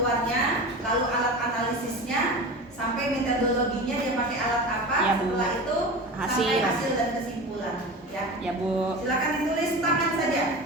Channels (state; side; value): normal; both; correlation 0.30